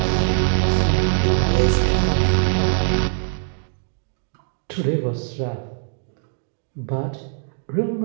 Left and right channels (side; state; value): left; silent; 59 dB below the other